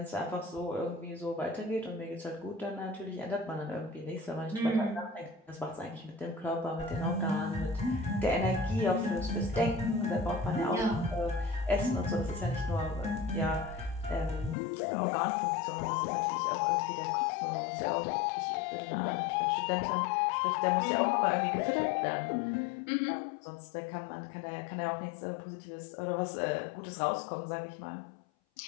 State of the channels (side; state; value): right; drops out; at 14.6 s